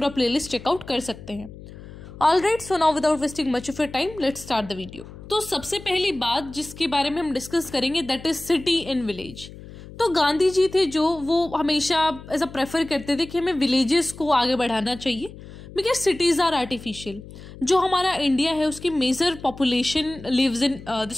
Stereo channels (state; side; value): noise; left; hum, 16 dB below the sound